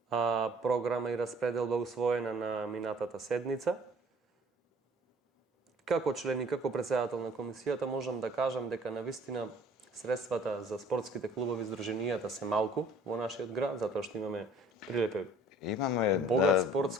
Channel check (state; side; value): normal; both; correlation 0.54